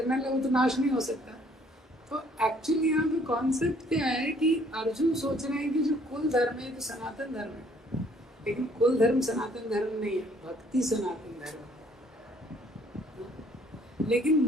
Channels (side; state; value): both; normal; correlation 0.61